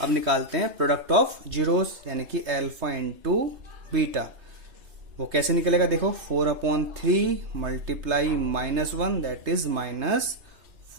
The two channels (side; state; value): left; late; 2.8 ms